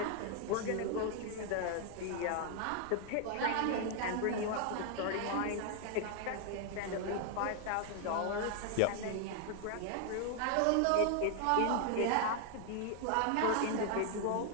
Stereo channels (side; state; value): both; different; correlation 0.00